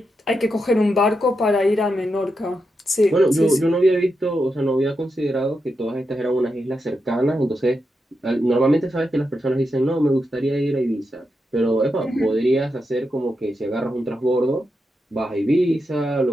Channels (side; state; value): both; normal; correlation 0.86